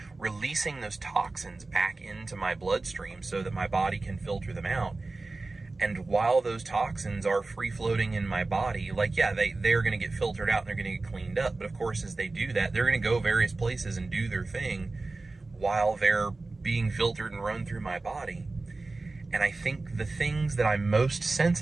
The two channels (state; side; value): quieter; left; 3.4 dB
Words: releasing those toxins back into my bloodstream so that my body can filter them out. And while those toxins are free-floating in my body, like, yeah, they're going to get filtered out and they're going to get cleaned up. But of course, as they do that, they're going to go various places and do their thing while they're being filtered and run through my body. And I think the things that I'm most